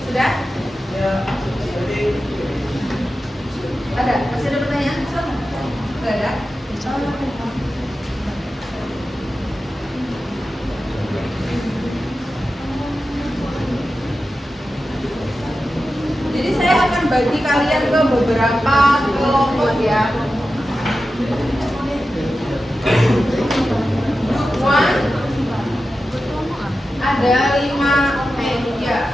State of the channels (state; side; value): normal; both; correlation 0.92